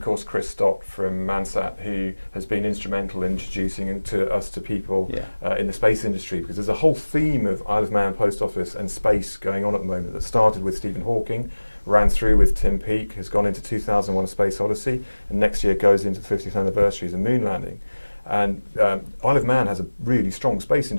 course, Chris Stott from Mansat, who has been instrumental in introducing us to people in the space industry, because there's a whole theme of Isle of Man, Post Office and space going on at the moment that started with Stephen Hawking, ran through with Tim Peake, has gone into 2001 A Space Odyssey, and next year goes into the 50th anniversary as a moon landing. And Isle of Man has a really strong space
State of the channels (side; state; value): both; inverted; correlation -1.00